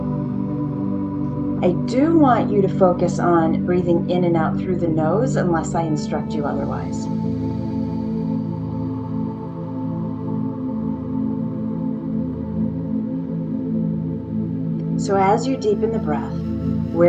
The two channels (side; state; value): both; identical; correlation 1.00